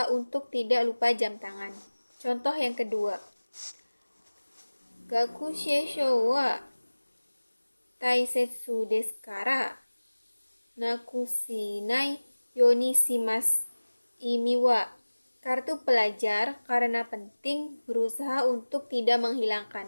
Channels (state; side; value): inverted; both; correlation -1.00